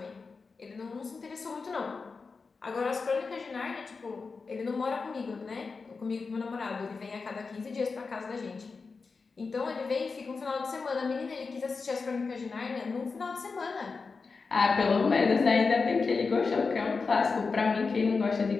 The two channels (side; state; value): right; quieter; 4.6 dB